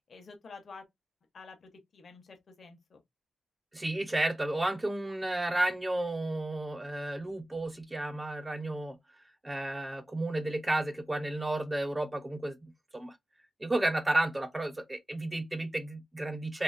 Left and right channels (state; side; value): normal; both; correlation 0.96